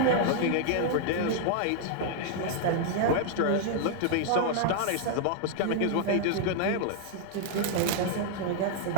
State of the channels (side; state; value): both; different; correlation -0.01